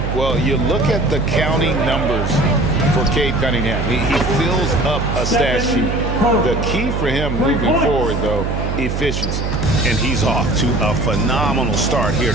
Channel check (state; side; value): noise; right; hum, 2 dB below the sound